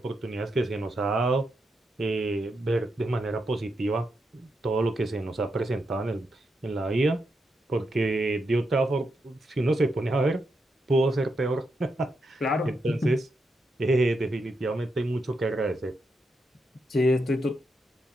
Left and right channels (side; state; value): both; normal; correlation 0.84